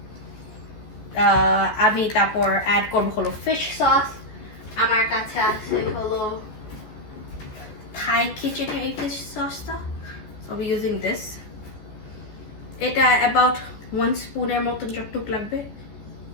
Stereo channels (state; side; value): late; right; 14 ms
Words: আমি তারপর অ্যাড করব হলো ফিশ সস, আমার কাছে আছে হলো থাই খিচুড়ি এই ফিশ সসটা, I'll be using this. এটা about 1 স্পুনের মতন যতটুকু লাগবে